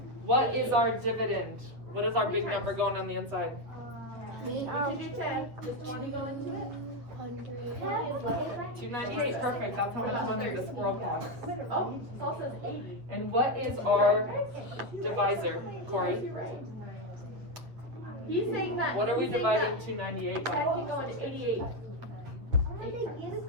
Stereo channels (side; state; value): left; late; 8.2 ms